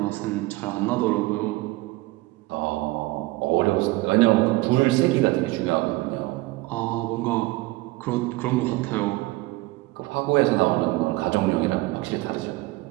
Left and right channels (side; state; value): left; quieter; 20.5 dB